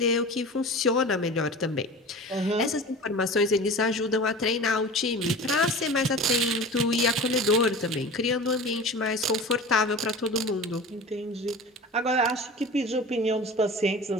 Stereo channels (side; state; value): both; normal; correlation 0.36